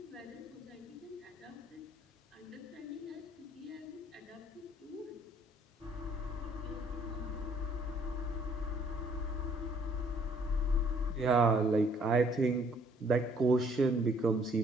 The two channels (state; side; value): normal; both; correlation 0.62